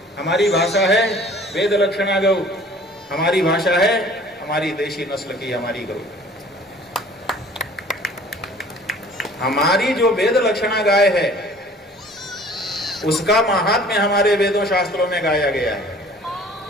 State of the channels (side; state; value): both; normal; correlation 0.50